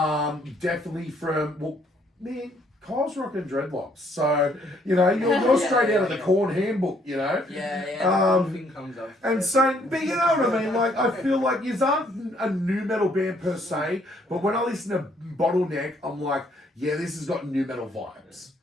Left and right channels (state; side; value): normal; both; correlation 0.66